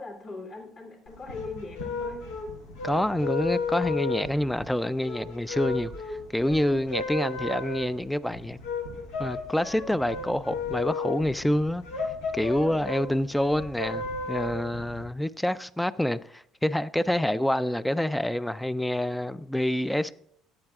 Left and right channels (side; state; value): both; normal; correlation 0.88